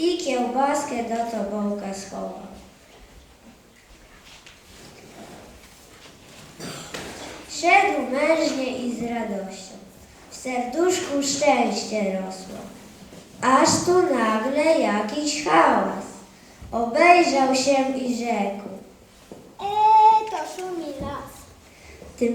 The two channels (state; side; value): identical; both; correlation 1.00